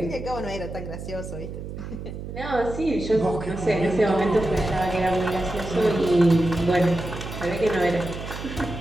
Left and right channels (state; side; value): noise; right; hum, 9 dB below the sound